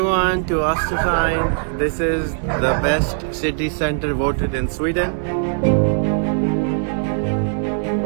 to us to find, this is the best city center voted in Sweden.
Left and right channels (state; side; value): silent; left; digital silence